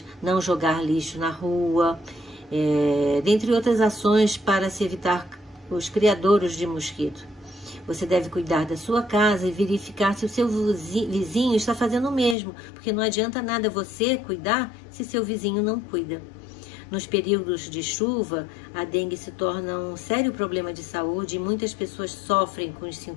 não jogar lixo na rua, dentre outras ações para se evitar os criadouros de mosquito. Você deve cuidar da sua casa e verificar se o seu vizinho está fazendo o mesmo, porque não adianta nada você cuidar se seu vizinho não cuida. Nos períodos de chuva, a dengue se torna um sério problema de saúde e muitas pessoas sofrem com os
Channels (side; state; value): right; drops out; at 12.4 s